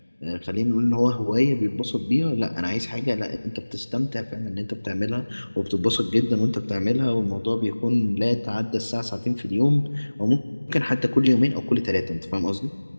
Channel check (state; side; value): inverted; both; correlation -1.00